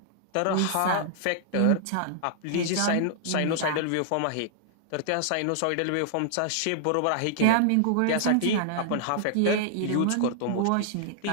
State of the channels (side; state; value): both; different; correlation -0.01